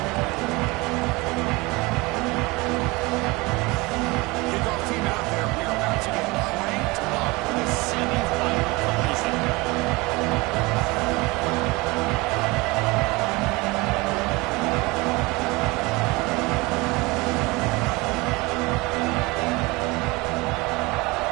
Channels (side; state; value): left; quieter; 23.8 dB